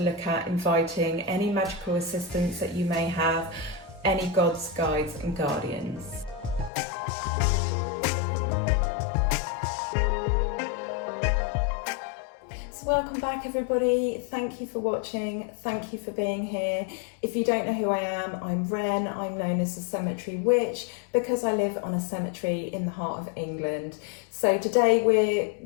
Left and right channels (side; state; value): right; drops out; at 6.7 s